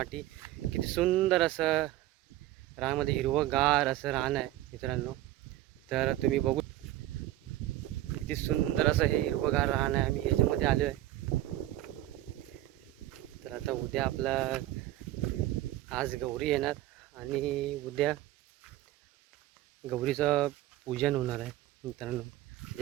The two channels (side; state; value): left; quieter; 14.9 dB